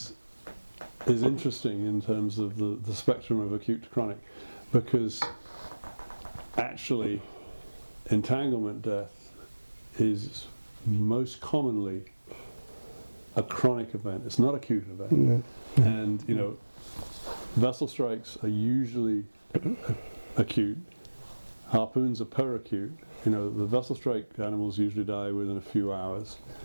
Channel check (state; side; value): inverted; both; correlation -1.00